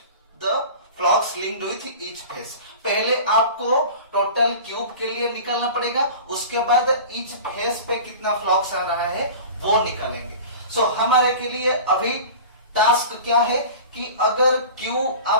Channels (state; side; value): inverted; both; correlation -0.37